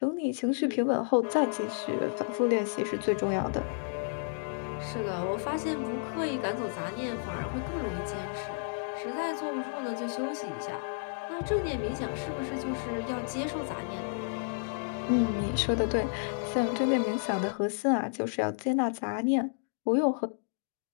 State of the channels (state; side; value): silent; right; digital silence